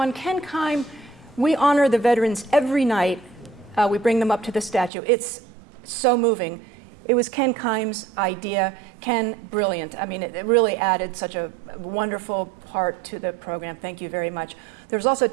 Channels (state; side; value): drops out; left; at 4.9 s